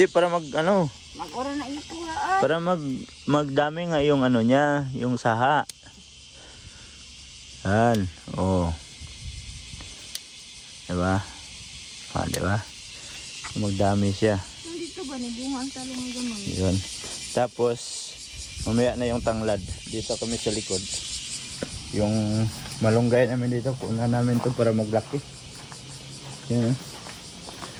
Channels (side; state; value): both; identical; correlation 1.00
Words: para para magdami nga yung niya, yung saha. Yan. Oh. Diba? Diba? Magdami siya. Dito ba bunga ang talong ng gamang? Yun. Tapos mamaya na yung tanglad. Dito kami sa likod. Yung malunggay namin dito, punan namin to para maglaki. Yan.